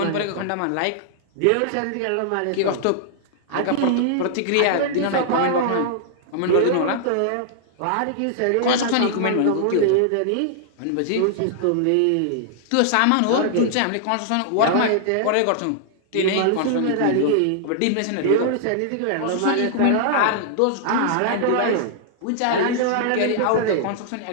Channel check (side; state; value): both; different; correlation -0.01